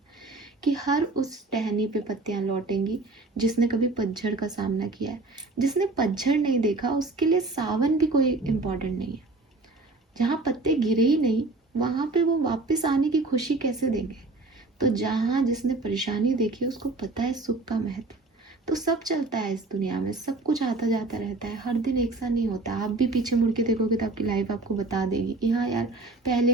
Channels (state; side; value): quieter; left; 3.2 dB